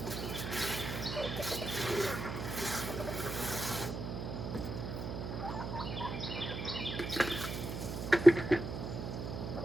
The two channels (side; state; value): right; noise; hum, 5 dB below the sound